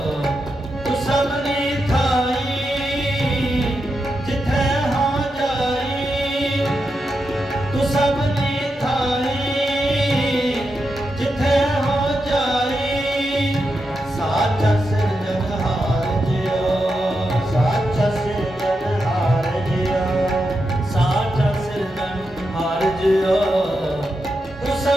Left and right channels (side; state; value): both; normal; correlation 0.86